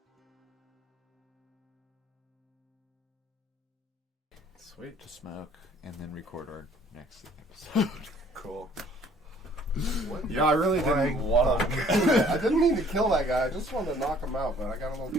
Sweet. To smoke and then record our next episode. Cool. Yeah, I really Flying didn't want to. I didn't mean to kill that guy. I just wanted to knock him out, but I got a little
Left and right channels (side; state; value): both; normal; correlation 0.57